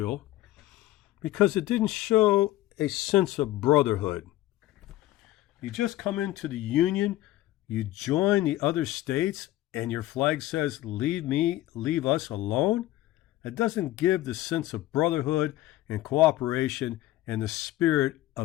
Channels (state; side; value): quieter; right; 15.5 dB